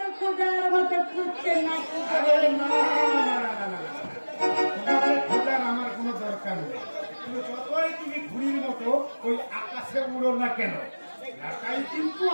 খোঁজার মতো খুঁজছেন নাকি? আরে না, না, না, না, না, না। তোমাকে খোঁজার আমার কোনো দরকার নেই। তুমি যতই তুমি ঘুড়ির মতো ওই আকাশে উড়ো না কেন, এটাই কিন্তু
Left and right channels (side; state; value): both; inverted; correlation -1.00